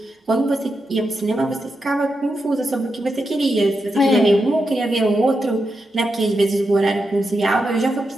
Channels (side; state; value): both; normal; correlation 0.87